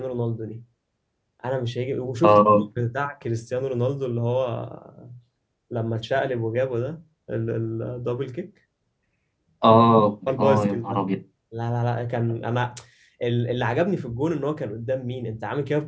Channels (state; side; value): identical; both; correlation 1.00